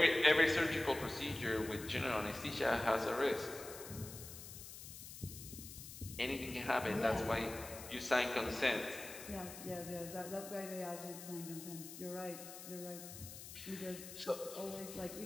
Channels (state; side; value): noise; left; hiss, 12 dB below the sound